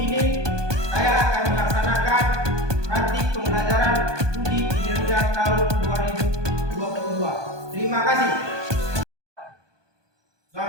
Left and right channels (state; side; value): late; left; 1.2 ms